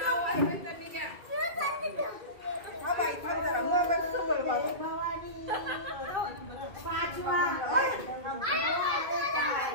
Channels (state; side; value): late; left; 2.4 ms